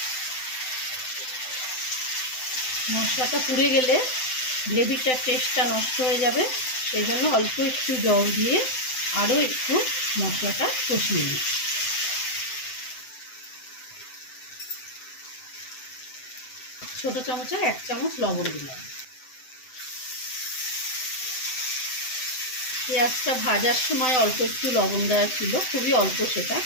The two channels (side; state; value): right; late; 7.8 ms